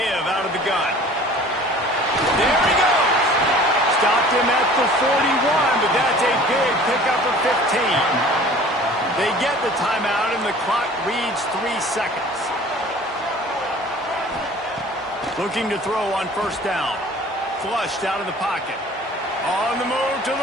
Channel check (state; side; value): normal; both; correlation 0.47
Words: out of the gun. There he goes. Stopped him at the 41, but that's a big pickup of 15. They get the timeout, and the clock reads 3 seconds. Looking to throw on first down. Flushed out of the pocket. On the move to